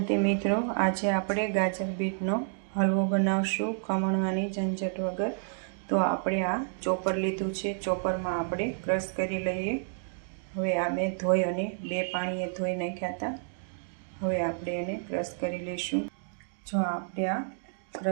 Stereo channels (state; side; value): silent; left; digital silence